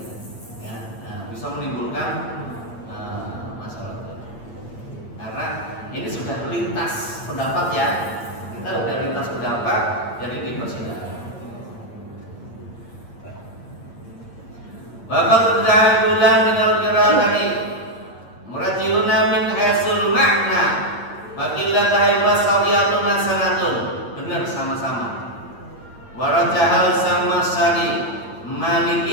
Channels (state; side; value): late; right; 8.6 ms